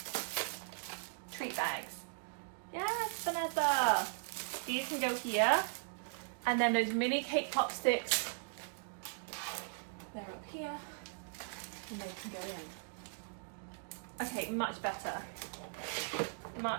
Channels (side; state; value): left; silent; digital silence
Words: Treat bags. Yes, Vanessa. These can go here. And then those mini cake pop sticks, they're up here. And they can go in. Okay, much better.